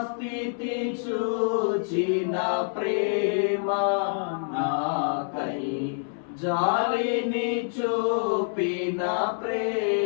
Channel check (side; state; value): right; silent; 60 dB below the other